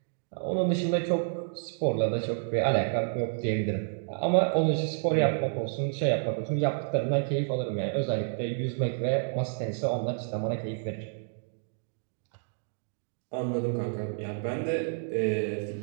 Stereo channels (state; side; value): silent; left; digital silence